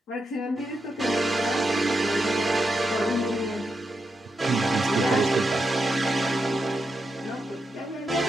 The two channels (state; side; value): normal; both; correlation 0.85